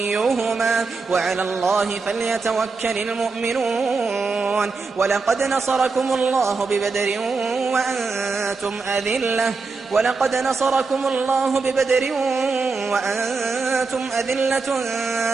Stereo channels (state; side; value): quieter; left; 4.3 dB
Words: وعلى الله فليتوكل المؤمنون. ولقد نصركم الله ببدر وأنتم أذلة